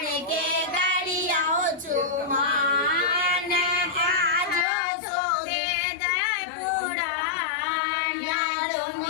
के गरियाओ चुमान आज सो वेद पुराण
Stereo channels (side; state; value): right; drops out; at 4.7 s